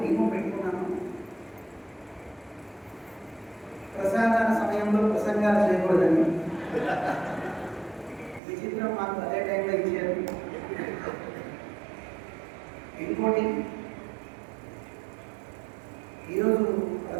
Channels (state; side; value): drops out; left; at 8.4 s